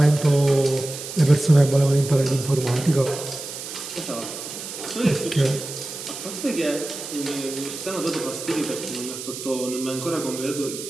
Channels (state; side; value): noise; right; hiss, 9 dB below the sound